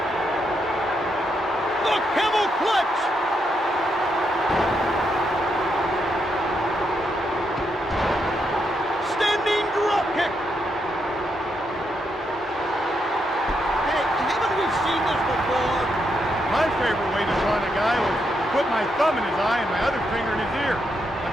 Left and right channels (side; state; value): both; normal; correlation 0.80